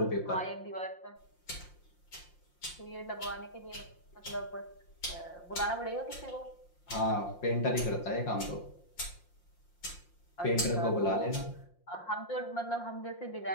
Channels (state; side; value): late; right; 5.7 ms